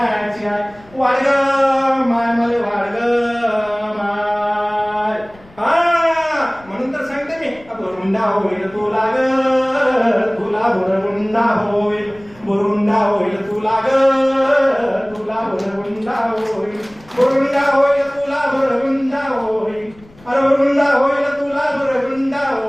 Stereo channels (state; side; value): noise; left; rumble, 25 dB below the sound